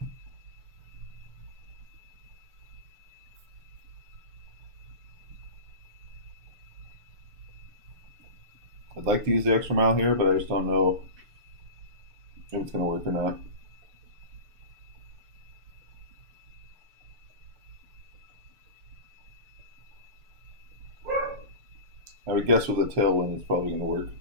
I'd like to use the extra mile here, but I just don't know if it's going to work or not. I would guess with a tailwind it's probably going to work.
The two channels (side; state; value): left; late; 6.8 ms